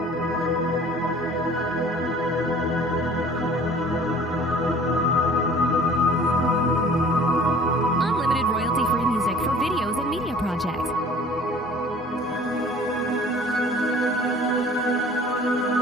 Unlimited royalty-free music for videos and media projects.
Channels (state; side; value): normal; both; correlation 0.49